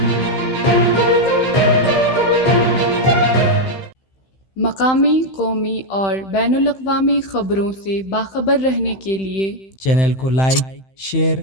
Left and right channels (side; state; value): right; late; 15 ms